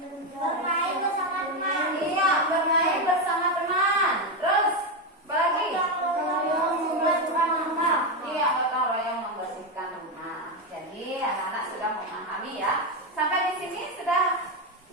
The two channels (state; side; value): normal; both; correlation 0.09